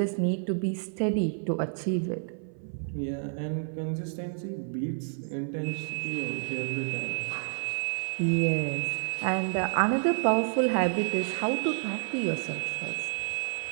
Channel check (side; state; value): left; silent; 58 dB below the other